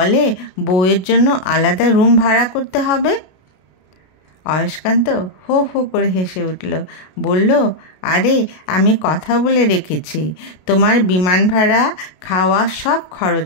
বউয়ের জন্য আলাদা রুম ভাড়া করতে হবে। অয়স্কান্ত হো হো করে হেসে উঠল, বলল, আরে আমি কথা বলে রেখেছি, তোমার বিমান ভাড়া, খাওয়া সব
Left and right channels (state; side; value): late; right; 33 ms